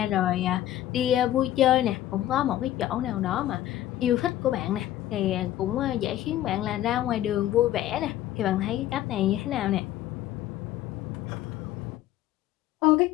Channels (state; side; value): quieter; right; 13.4 dB